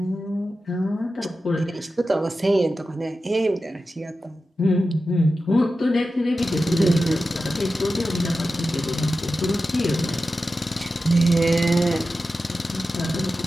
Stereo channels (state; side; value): normal; both; correlation 0.92